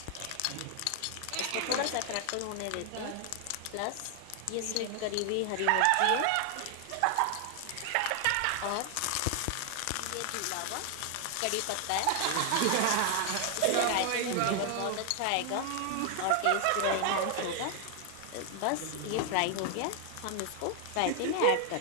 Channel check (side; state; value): both; different; correlation 0.00